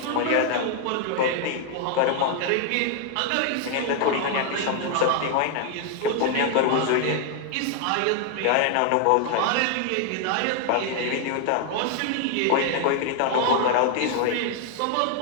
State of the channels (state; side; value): different; both; correlation 0.00